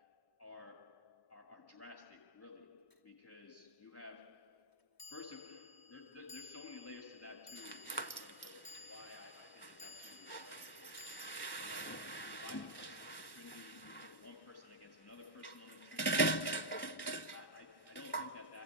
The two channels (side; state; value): right; late; 1.1 ms